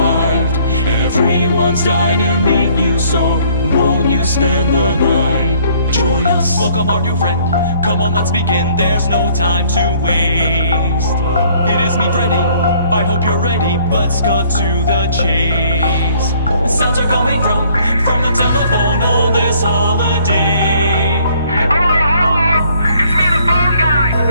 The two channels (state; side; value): inverted; both; correlation -0.60